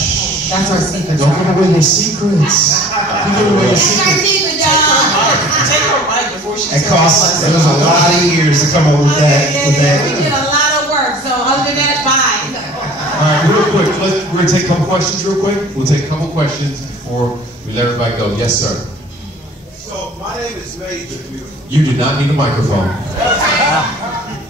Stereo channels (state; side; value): normal; both; correlation 0.48